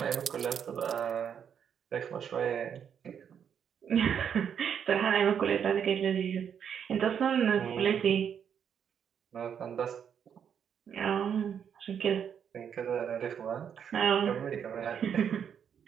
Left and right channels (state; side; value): quieter; left; 8.0 dB